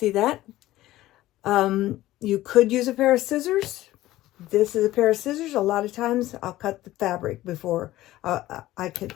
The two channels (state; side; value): quieter; right; 15.9 dB